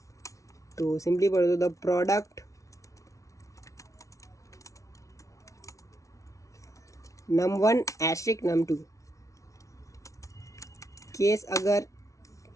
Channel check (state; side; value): late; right; 0.15 ms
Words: तो सिंपली बोल दो the product num1 asterisk num2, case अगर